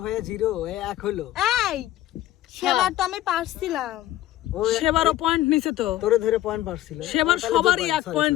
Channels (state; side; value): quieter; right; 14.1 dB